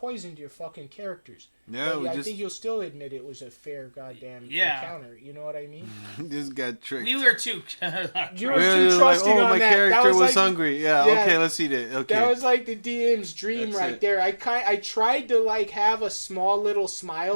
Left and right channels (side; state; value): both; inverted; correlation -1.00